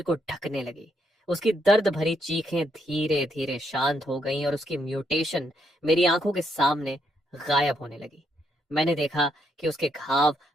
को ढकने लगी। उसकी दर्द भरी चीखें धीरे धीरे शांत हो गईं और उसकी म्यूटेशन मेरी आंखों के सामने गायब होने लगी। मैंने देखा कि उसके घाव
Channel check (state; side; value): normal; both; correlation 0.76